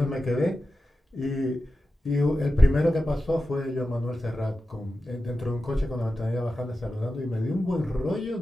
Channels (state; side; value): normal; both; correlation 0.92